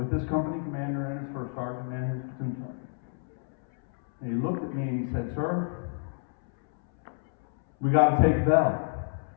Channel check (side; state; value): right; silent; 59 dB below the other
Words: his company commander and his first sergeant and his platoon sergeant. And he looked at me and he said, "Sir, we got to take Bell."